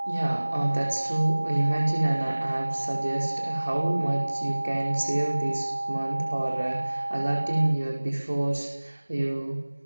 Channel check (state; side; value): inverted; both; correlation -1.00